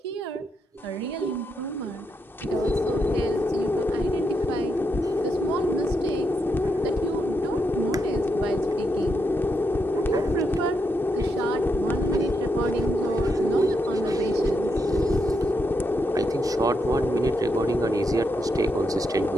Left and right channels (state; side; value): normal; both; correlation 0.82